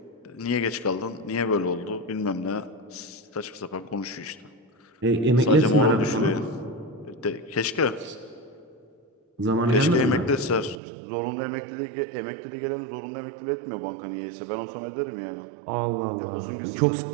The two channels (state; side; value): drops out; left; at 10.8 s